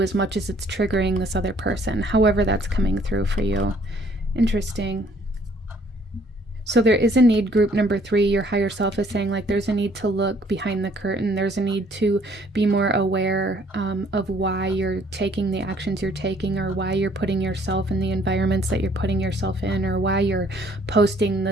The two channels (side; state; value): both; normal; correlation 0.61